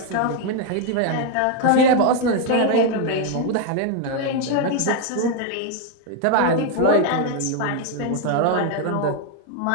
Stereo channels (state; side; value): different; both; correlation 0.01